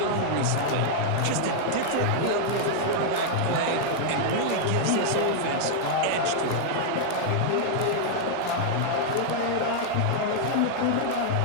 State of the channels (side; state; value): both; different; correlation -0.01